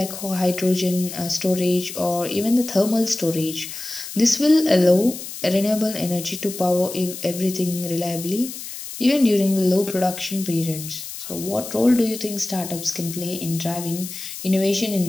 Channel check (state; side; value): noise; left; hiss, 10 dB below the sound